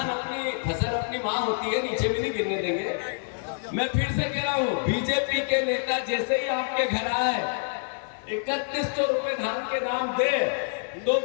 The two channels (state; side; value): silent; right; 60 dB below the other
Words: अपनी फसल अपनी माँ होती है, नीचे भी नहीं गिरने देंगे। मैं फिर से कह रहा हूँ, बीजेपी के नेता जैसे ही आपके घर आए 3100 रुपए धान के दाम दे तो